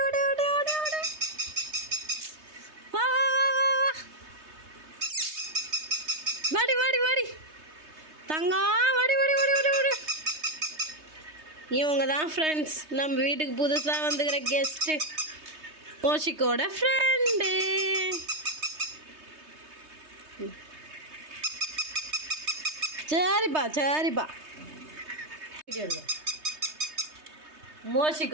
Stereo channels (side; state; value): left; late; 3.2 ms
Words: ஓடி ஓடி ஓடி ஓடி வா வா வா வா வா வாடி வாடி வாடி தங்கம் வாடி வாடி வாடி ஓடி ஓடி. இவங்க தான் ஃப்ரெண்ட்ஸ், நம்ம வீட்டுக்கு புதுசாக வந்துக்கிற கெஸ்ட்டு, மோஷிக்கோட ஃப்ரெண்டு. சரிப்பா சரிப்பா,